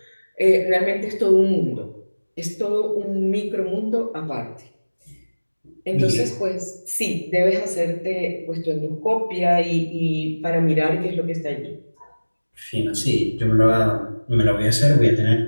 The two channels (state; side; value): inverted; both; correlation -1.00